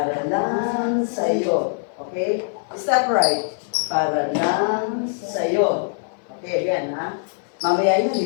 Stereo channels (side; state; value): right; silent; digital silence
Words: lang sa'yo. Okay? Step right. Para lang sa'yo. Okay, again, ha? Mamaya yun,